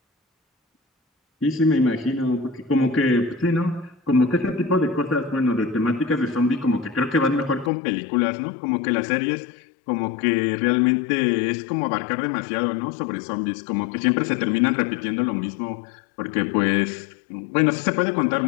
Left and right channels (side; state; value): right; drops out; at 7.7 s